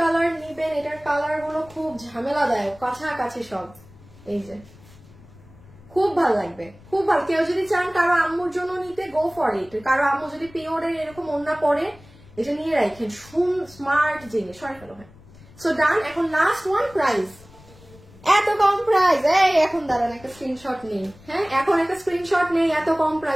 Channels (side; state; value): left; noise; rumble, 23 dB below the sound